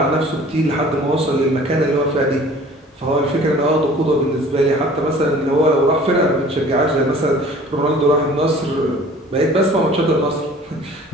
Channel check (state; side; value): normal; both; correlation 0.48